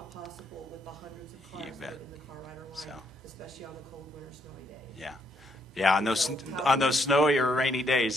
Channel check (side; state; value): both; normal; correlation 0.73